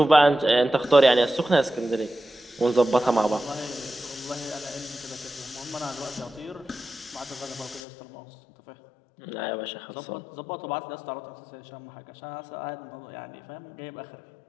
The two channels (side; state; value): right; drops out; at 7.8 s